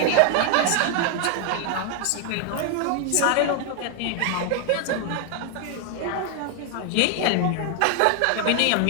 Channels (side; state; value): both; different; correlation 0.00